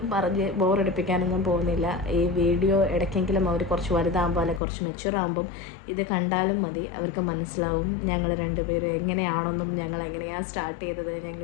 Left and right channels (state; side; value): drops out; right; at 4.6 s